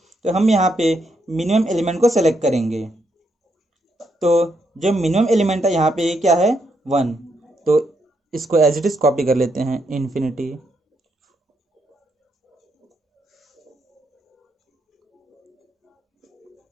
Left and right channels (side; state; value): both; normal; correlation 0.77